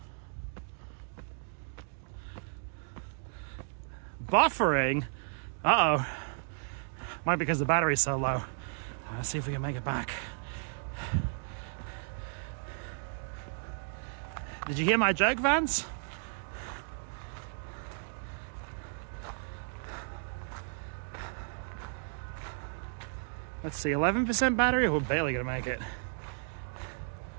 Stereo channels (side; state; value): left; silent; digital silence